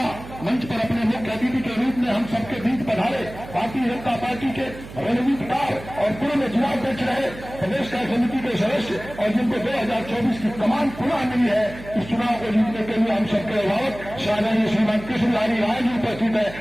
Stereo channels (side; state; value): right; noise; hum, 15 dB below the sound